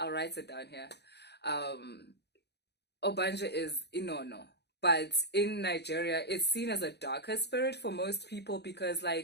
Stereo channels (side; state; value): right; late; 0.49 ms